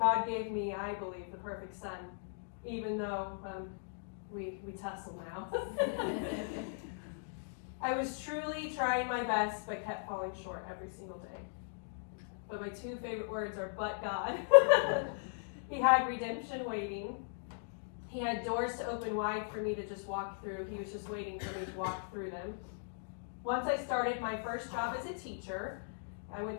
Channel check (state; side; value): silent; right; digital silence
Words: gave me, I believe, the perfect son, even though we tussle now. I was truly trying my best, but kept falling short every single day. But my two favorite words are, but God. He had redemption waiting. He had doors to open wide for me to just walk through. He was just waiting for me to walk through them. Once I started my first job as a teacher, I went